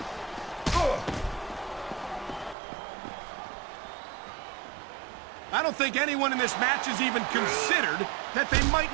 I don't think anyone in this match has even considered that they might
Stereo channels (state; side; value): drops out; left; at 2.6 s